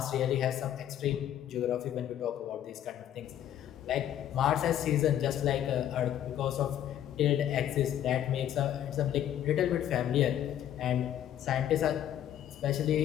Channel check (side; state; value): right; quieter; 11.0 dB